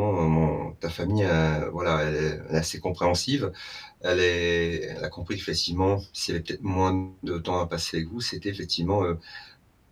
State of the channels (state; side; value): identical; both; correlation 1.00